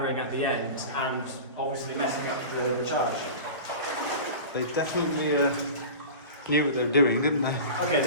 at the end and obviously messing up the charge. They definitely knew what they were doing, didn't they? Okay,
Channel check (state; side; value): inverted; both; correlation -0.34